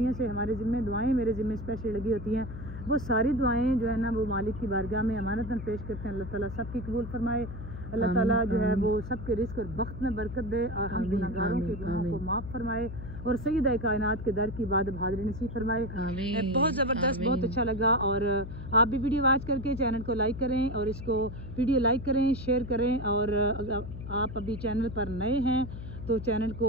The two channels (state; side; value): noise; left; hum, 9 dB below the sound